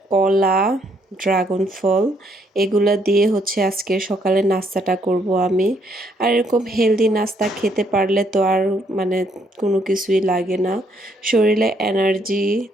কলা, ড্রাগন ফল, এগুলা দিয়ে হচ্ছে আজকে সকালে নাস্তাটা করব আমি। আর এরকম হেলদি নাস্তা খেতে পারলে তো আর মানে কোনো কিছুই লাগে না, শরীরে এনার্জি।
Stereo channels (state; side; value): normal; both; correlation 0.70